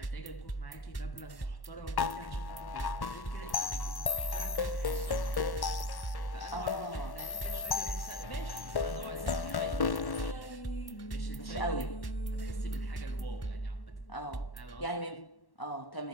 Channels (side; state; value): right; late; 1.1 ms